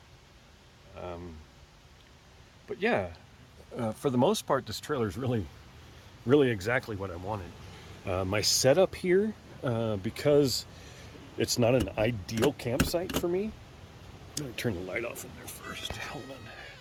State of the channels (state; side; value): identical; both; correlation 1.00